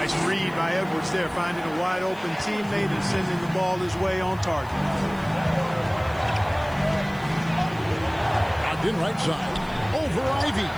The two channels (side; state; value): left; noise; hiss, 25 dB below the sound